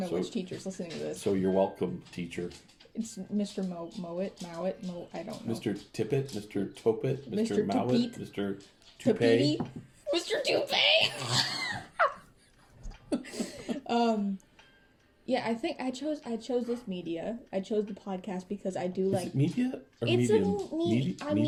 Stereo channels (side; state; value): both; identical; correlation 1.00